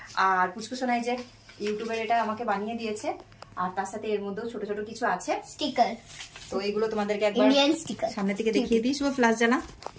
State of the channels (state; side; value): identical; both; correlation 1.00